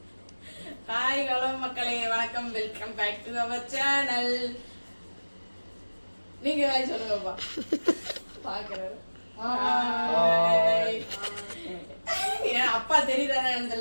ஹாய் ஹலோ மக்களே, வணக்கம், welcome back to our channel. நீங்க ஹாய் சொல்லுங்கப்பா. பாக்குறாரு. அப்பா தெரியுதானே?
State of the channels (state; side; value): inverted; both; correlation -1.00